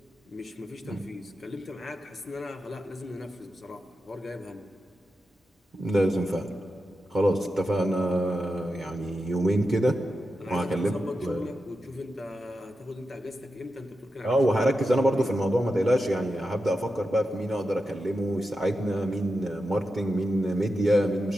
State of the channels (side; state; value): both; normal; correlation 0.89